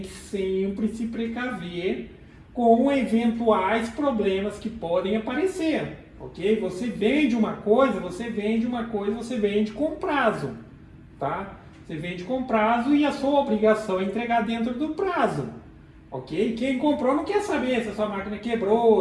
que sempre se precaver com eventuais problemas que podem aparecer. Ok? Você vende uma coisa, você vende com prazo, tá? Você vende com prazo e a sua obrigação é entregar dentro do prazo, ok? Quem comprou não quer saber se a sua máquina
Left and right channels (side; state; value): both; identical; correlation 1.00